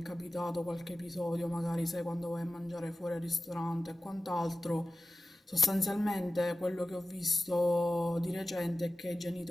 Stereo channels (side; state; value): both; normal; correlation 0.95